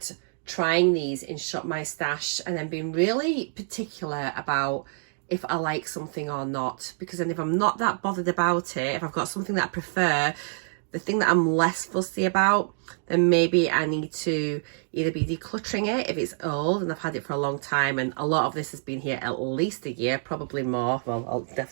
trying these in Shop My Stash and then being really particular about if I like something or not. Because then if I'm not that bothered about it, if I've got something that I prefer, the thing that I'm less fussy about, then maybe I need to either be decluttering it if it's old and I've had it for a long time, and a lot of this has been here at least a year, probably more, well,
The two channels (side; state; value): left; silent; digital silence